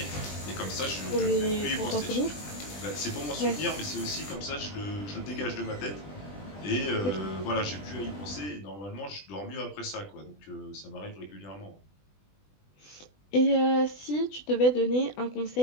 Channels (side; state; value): right; late; 20 ms